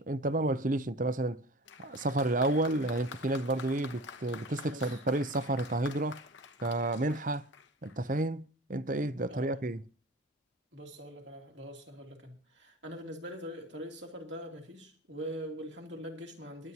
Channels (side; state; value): both; normal; correlation 0.38